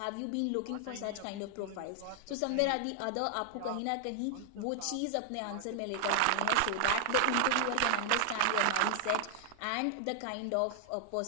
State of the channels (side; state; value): both; different; correlation 0.00